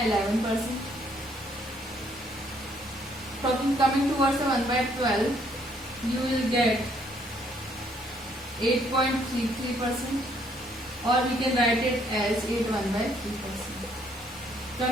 Coming towards the 1 by 12, you will get 8.33%, or we can write it as 8 1 by 3%.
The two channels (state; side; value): normal; both; correlation 0.67